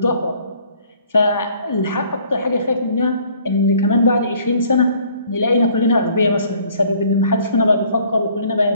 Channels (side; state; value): both; inverted; correlation -0.58